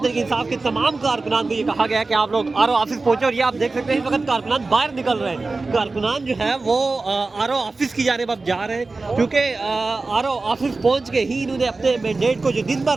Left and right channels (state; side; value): quieter; left; 3.6 dB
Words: تحریک انصاف کے تمام کارکنان کو یہ کہا گیا کہ آپ لوگ آر او آفس پہنچیں۔ اور یہ آپ دیکھ سکتے ہیں اس وقت کارکنان باہر نکل رہے ہیں، کارکنان جو ہے وہ آر او آفس کی جانب اب جا رہے ہیں، کیونکہ آر او آفس پہنچ کے ہی انہوں نے اپنے مینڈیٹ کو جو دن بھر